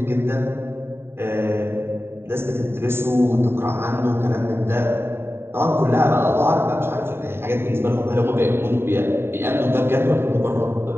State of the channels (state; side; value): late; left; 0.11 ms